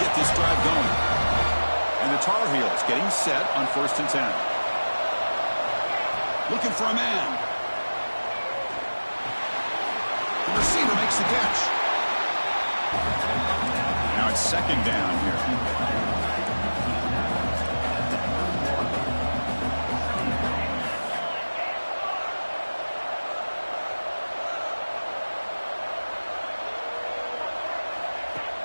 get this drive going. And the Tar Heels getting set on first and 10. Looking for a man. The receiver makes the catch. Now it's second down here.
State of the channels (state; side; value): inverted; both; correlation -1.00